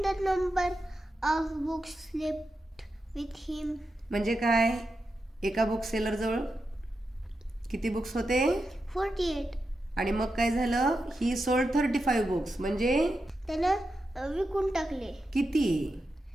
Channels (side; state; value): both; normal; correlation 0.88